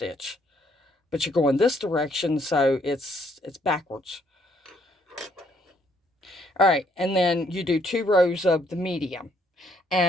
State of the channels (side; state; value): both; normal; correlation 0.68